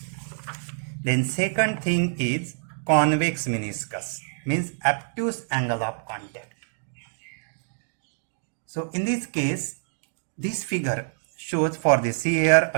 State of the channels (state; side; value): silent; left; digital silence